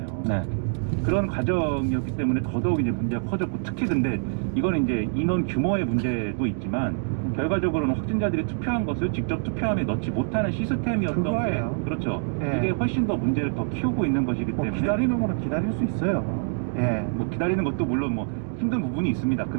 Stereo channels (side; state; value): left; silent; 61 dB below the other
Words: 네. 그런 과정이었기 때문에 더더욱 이제 문제가 커졌고, 특히 근데 이거는 이제 인원 규모의 문제도 있지만 결과적으로는 확진자들이 투표한 것을 직접 투표함에 넣지 못하는 시스템이었던 그거예요. 게, 그렇죠. 예. 이게 훨씬 더 문제를 더 키우고 있는 것이기 뭐 때문에 기다리는 거는 기다릴 수 있어요. 예. 뭐 기다리는 것도 물론 뭐 힘든 부분이 있습니다.